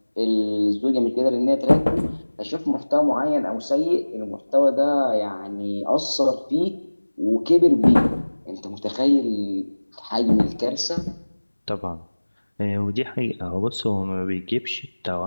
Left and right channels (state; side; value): inverted; both; correlation -1.00